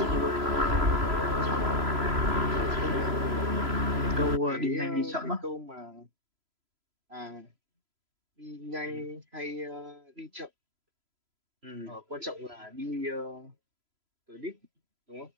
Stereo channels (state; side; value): late; left; 3.0 ms